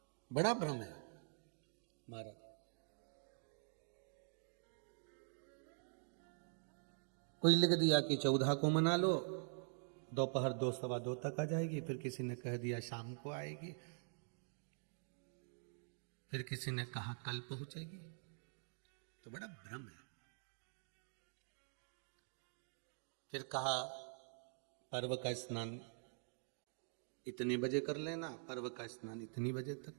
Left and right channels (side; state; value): left; silent; digital silence